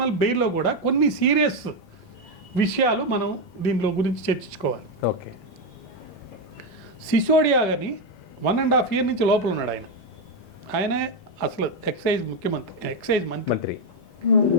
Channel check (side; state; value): both; normal; correlation 0.06